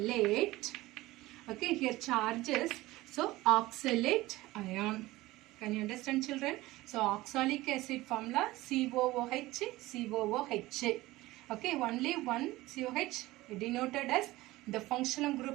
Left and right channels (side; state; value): left; quieter; 18.5 dB